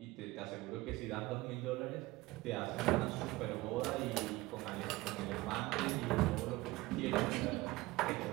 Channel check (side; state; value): left; quieter; 20.1 dB